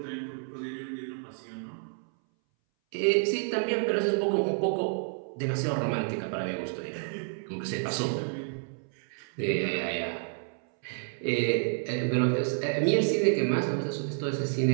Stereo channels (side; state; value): left; silent; 58 dB below the other